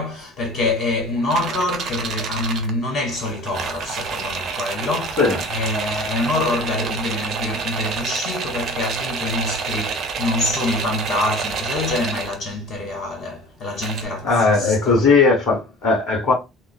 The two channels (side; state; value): both; normal; correlation 0.41